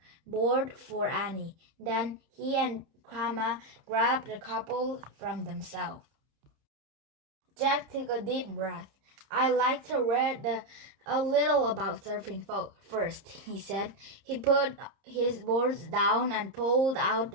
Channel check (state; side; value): late; left; 30 ms